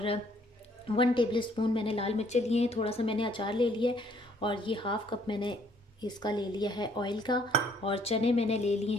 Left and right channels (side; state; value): both; normal; correlation 0.64